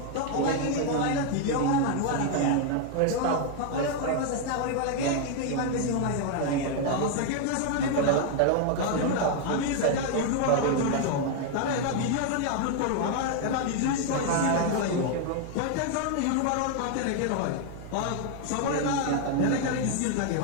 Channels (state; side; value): different; both; correlation 0.00